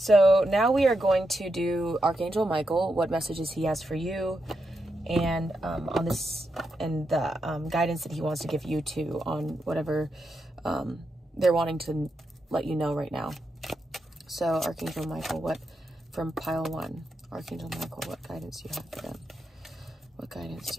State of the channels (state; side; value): normal; both; correlation 0.85